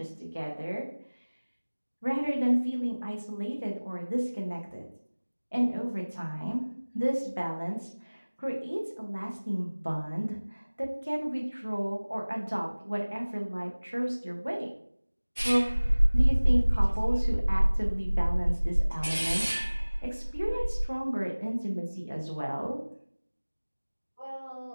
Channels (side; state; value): both; inverted; correlation -1.00